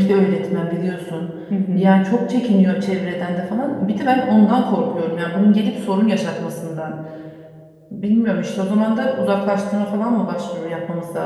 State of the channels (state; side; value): identical; both; correlation 1.00